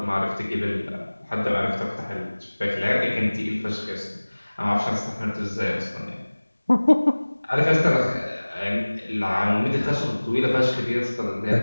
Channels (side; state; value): both; inverted; correlation -1.00